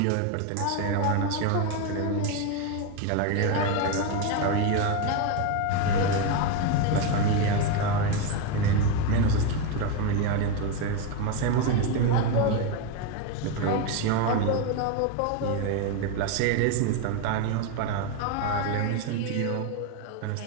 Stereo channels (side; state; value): both; different; correlation 0.03